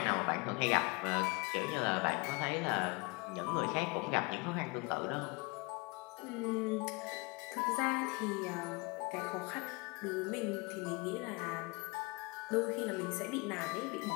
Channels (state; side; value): quieter; right; 28.0 dB